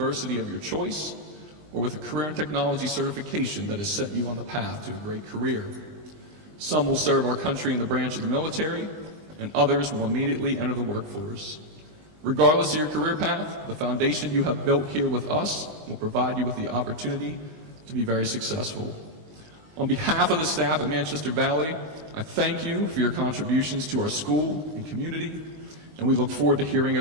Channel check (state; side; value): late; left; 20 ms